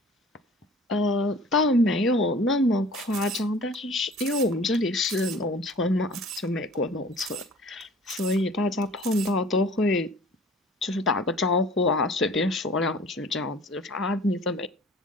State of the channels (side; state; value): both; normal; correlation 0.47